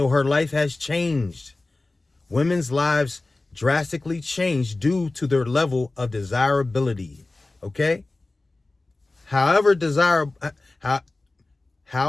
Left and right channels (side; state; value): right; quieter; 3.1 dB